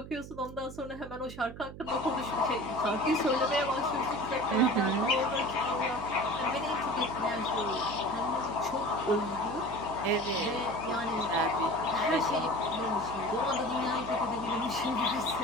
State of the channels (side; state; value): right; noise; hum, 13 dB below the sound